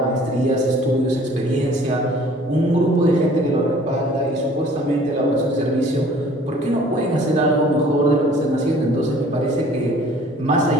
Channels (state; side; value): normal; both; correlation 0.52